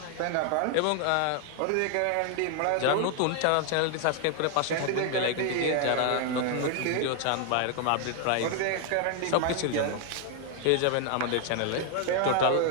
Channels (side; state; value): both; different; correlation 0.00